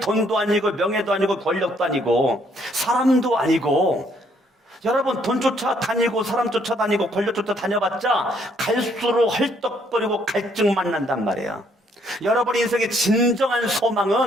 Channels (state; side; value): normal; both; correlation 0.68